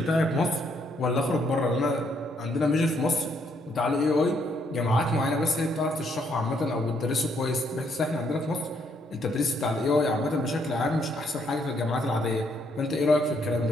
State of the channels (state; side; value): normal; both; correlation 0.71